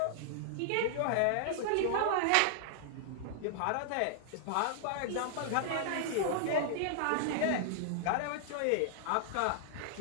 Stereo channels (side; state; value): both; different; correlation -0.01